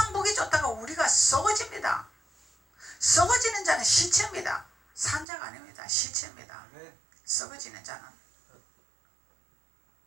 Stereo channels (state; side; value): drops out; left; at 5.2 s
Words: 보기 좋다가 우리가 썩어집니다. 썩어지는 자는 시체입니다. 산자가 아닙니다. 시체입니다. 썩어지는 자는.